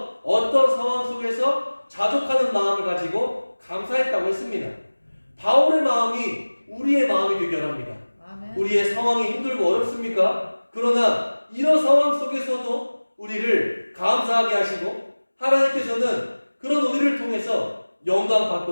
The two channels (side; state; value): both; inverted; correlation -1.00